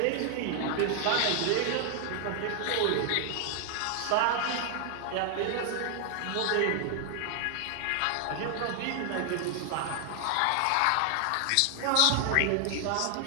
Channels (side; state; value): both; different; correlation 0.00